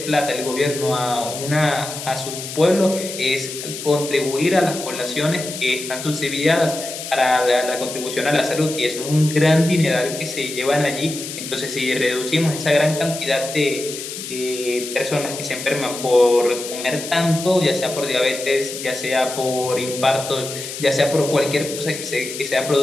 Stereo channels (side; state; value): left; noise; hiss, 8 dB below the sound